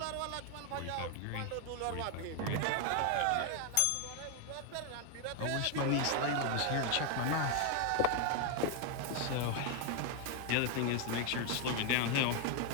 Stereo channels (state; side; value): different; both; correlation 0.01